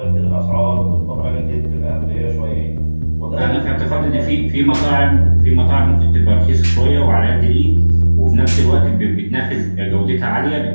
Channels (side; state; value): both; inverted; correlation -1.00